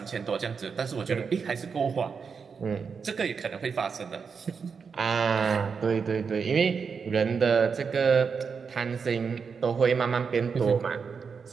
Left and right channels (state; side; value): quieter; left; 5.8 dB